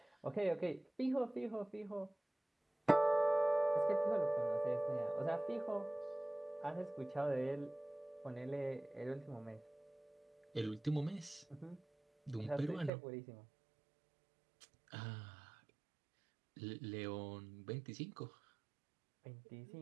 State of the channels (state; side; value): drops out; left; at 12.9 s